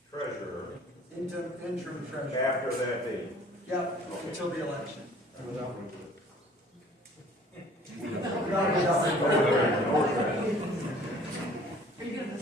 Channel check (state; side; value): normal; both; correlation 0.52